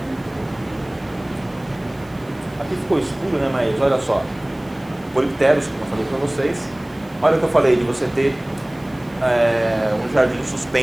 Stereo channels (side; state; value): right; noise; hiss, 28 dB below the sound